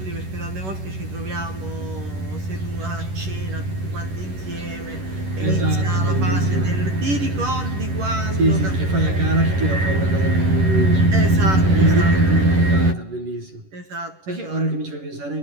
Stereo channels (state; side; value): late; left; 11 ms